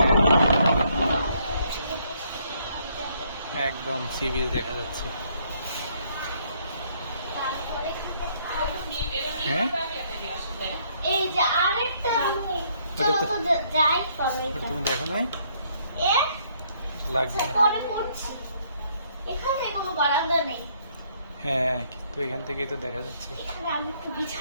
একদম সি বিচ দেখা যাচ্ছে। তারপরে হ্যাঁ, এই যে আরেকটা রুম, ওটা চলো তো- তো যাই পরে ওটা তুমি দেখো নাই? এ লাগবে না। পরে করছি। এখানে কোনো বারান্দা নেই। হ্যাঁ, কিন্তু এখান থেকেই তো দেখা যাচ্ছে। এখানে আমি একটু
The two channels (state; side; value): inverted; both; correlation -0.68